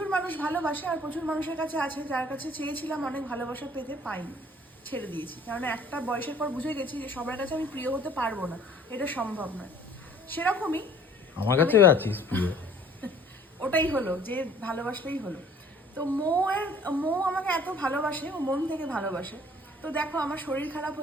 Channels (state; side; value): normal; both; correlation 0.53